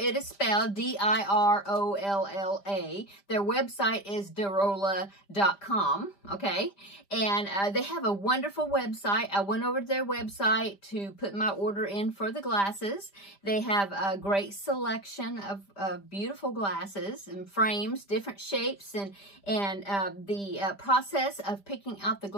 is spelled, D-I-R-O-L-L-A. Their website is Dirolla.com, okay? And they have a wonderful website. I went over to their website to put my order in for the glasses. They have a great selection of beautiful glasses and frames, different shapes, and the process of picking out the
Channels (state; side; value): late; right; 5.0 ms